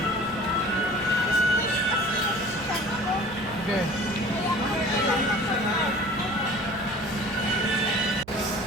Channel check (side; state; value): right; noise; rumble, 19 dB below the sound